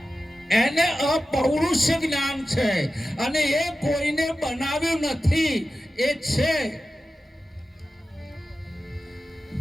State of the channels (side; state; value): both; normal; correlation 0.93